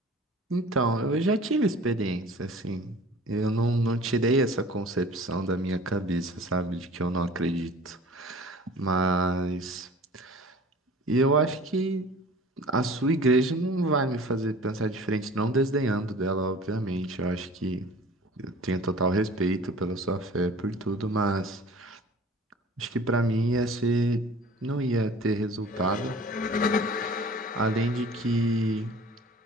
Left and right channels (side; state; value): both; normal; correlation 0.44